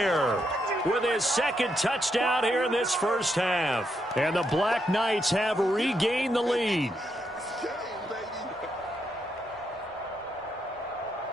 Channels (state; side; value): normal; both; correlation 0.80